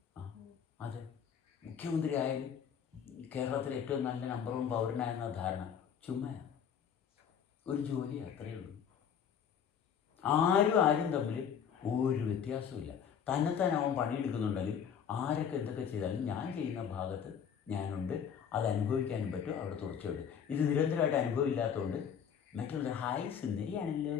അതെ, മുഖ്യമന്ത്രി ആയാലും കേരളത്തിലെ ഏറ്റവും നല്ല നമ്പർ 1 പൗരനായെന്ന ധാരണ ചുമ്മാ ഒരു ജോലി, അത്രയേ ഉള്ളൂ. ആരും തമ്മിൽ ഒരു വ്യത്യാസമില്ല. തന്നെത്താൻ അവൻ പണിയെടുക്കുന്നുണ്ടെങ്കിൽ ആരൊക്കെ എന്തൊക്കെ ചെയ്താലും ഞാൻ ചെയ്യുന്ന ഭാഗത്ത് ഞാനുണ്ട്, അത് അനുഭവിക്കാനും പറ്റും. അവിടെ തുടർച്ചയുണ്ട്. ഇത് നിരന്തരമായിട്ട് അനുഭവം ഇല്ലാത്തതുകൊണ്ട് മറ്റുള്ള ഹായ് സുന്ദരിയാണല്ലോ,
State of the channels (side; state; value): right; quieter; 7.9 dB